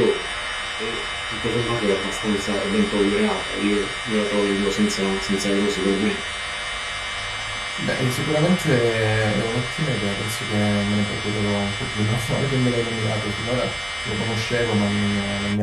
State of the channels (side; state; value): both; identical; correlation 1.00